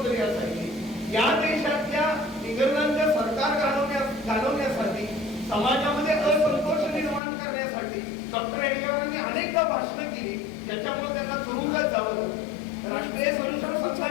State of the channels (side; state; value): right; drops out; at 7.2 s